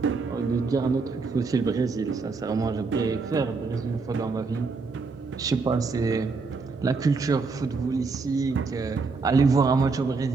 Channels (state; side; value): quieter; left; 4.3 dB